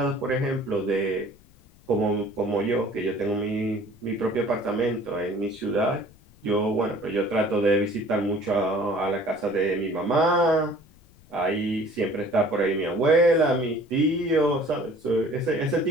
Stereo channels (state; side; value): noise; left; rumble, 27 dB below the sound